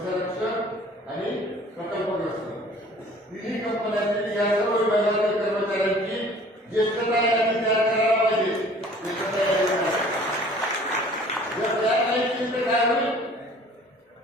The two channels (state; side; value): normal; both; correlation 0.50